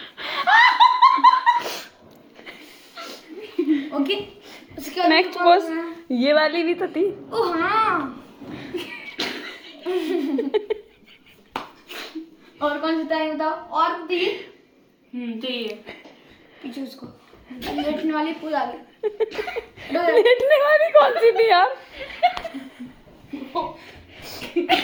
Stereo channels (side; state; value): both; identical; correlation 1.00